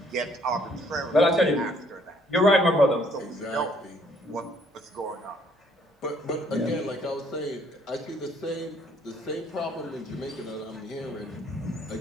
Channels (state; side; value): normal; both; correlation 0.64